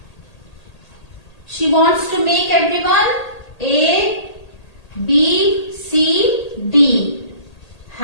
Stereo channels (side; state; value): right; late; 1.8 ms